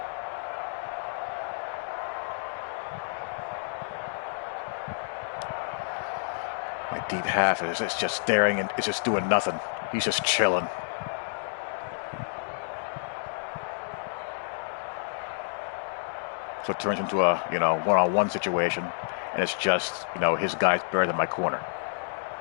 My deep half is just staring and it's just doing nothing. He's just chilling. So it turns into a, one-on-one situation, and it's just, his guy's better than my corner.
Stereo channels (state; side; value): silent; right; digital silence